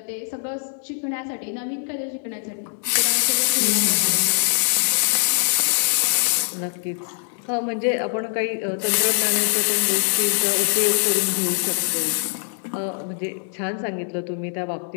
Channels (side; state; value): right; silent; digital silence